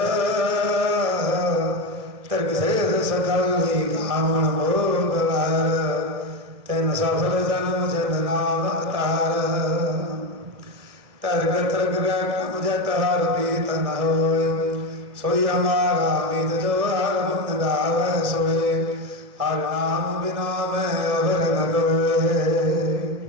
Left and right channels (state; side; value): late; left; 2.0 ms